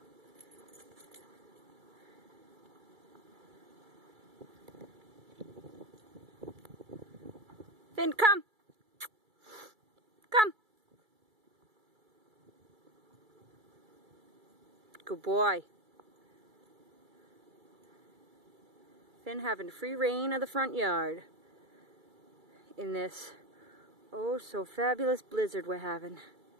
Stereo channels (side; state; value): left; late; 2.3 ms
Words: Finn, come! Come! Good boy. Finn having free reign of the front yard in this oh so fabulous blizzard we're having.